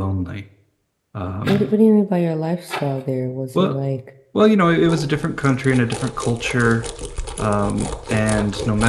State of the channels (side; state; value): both; identical; correlation 1.00